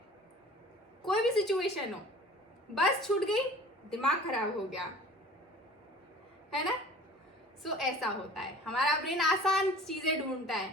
कोई भी सिचुएशन हो, बस छूट गई, दिमाग खराब हो गया, है ना। सो ऐसा होता है, हमारा ब्रेन आसान चीजें ढूंढता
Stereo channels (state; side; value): normal; both; correlation 0.44